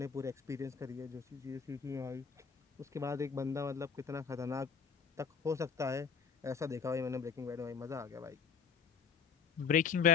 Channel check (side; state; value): right; quieter; 6.4 dB